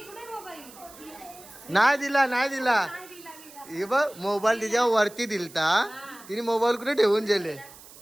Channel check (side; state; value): right; noise; hiss, 20 dB below the sound